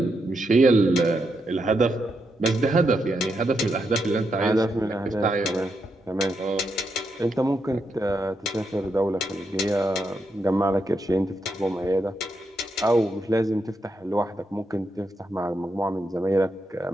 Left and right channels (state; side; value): normal; both; correlation 0.83